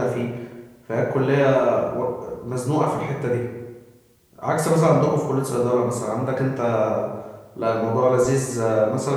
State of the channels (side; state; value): both; identical; correlation 1.00